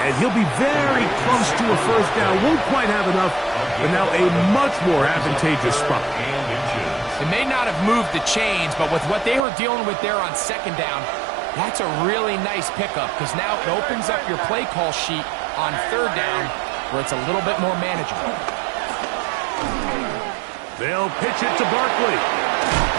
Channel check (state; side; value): drops out; left; at 9.5 s